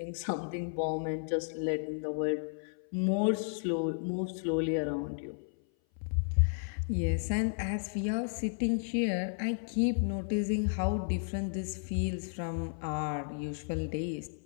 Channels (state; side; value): silent; right; 56 dB below the other